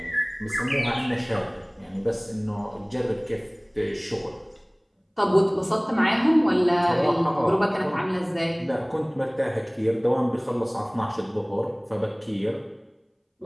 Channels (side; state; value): both; identical; correlation 1.00